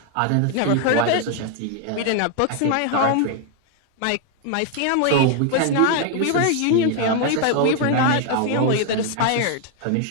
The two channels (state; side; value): different; both; correlation 0.00